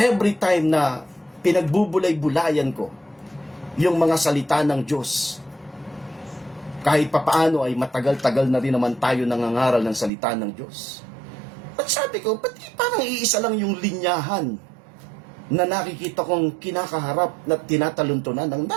time na pinagbubulay-bulayan ko yung mga salita ng Diyos, kahit papaano ay matagal-tagal na rin naman tayo nangangaral ng salita ng Diyos. At sabi ko, ba't parang iisa lang yung linyahan na nakikita kong kinakaharap na tinataluntunan ng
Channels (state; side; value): drops out; left; at 10.1 s